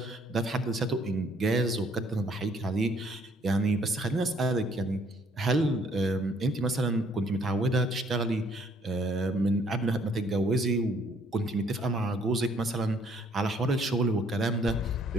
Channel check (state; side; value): normal; both; correlation 0.64